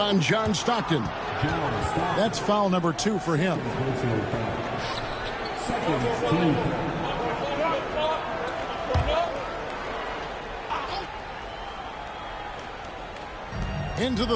John Stockton. That's foul number 2 for him. Into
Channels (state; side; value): identical; both; correlation 1.00